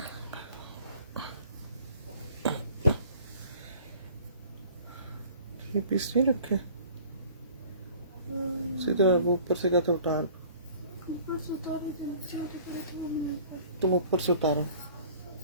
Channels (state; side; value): inverted; both; correlation -0.49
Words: ये पीस नहीं रखे सीधा, वो ऊपर से कहता उतार, तुम ऊपर से उतारो।